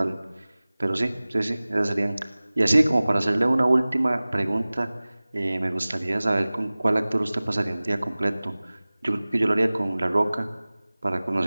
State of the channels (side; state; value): both; inverted; correlation -0.99